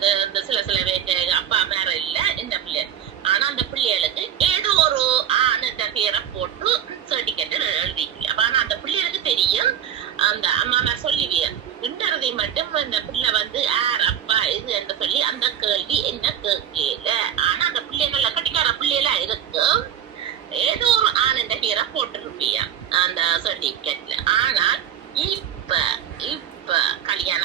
சில பேருக்கு அப்பா மேல இல்ல இந்த பிள்ளை, ஆனா அந்த பிள்ளைகளுக்கு ஏதோ ஒரு ஆணுன்ற பேரை போட்டு சர்டிபிகேட் எழுதிக்கல. ஆனா அந்த பிள்ளைகளுக்கு தெரியும், அந்த அம்மா நான் சொல்லுவேன் இன்றதை மட்டும் அந்த பிள்ளை யார் அப்பா இது என்று சொல்லி அந்த கேள்வி என்ன கேட்கல. ஆனா அந்த பிள்ளைகள கட்டிக்கார பிள்ளைகளா இருக்கும், ஏதோ ஒரு ஆணுன்ற பேரை போட்டிருப்பியா அந்த சர்டிபிகேட்ல. ஆனால் இப்ப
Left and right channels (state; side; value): quieter; left; 9.7 dB